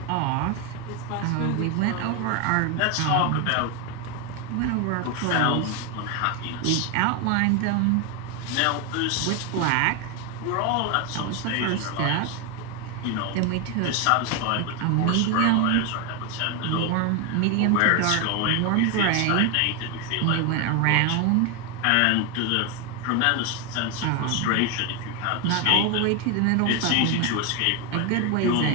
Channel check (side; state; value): both; different; correlation 0.03